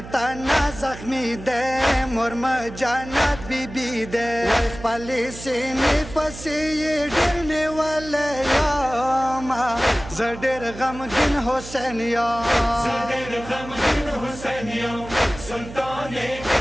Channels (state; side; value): noise; right; hum, 13 dB below the sound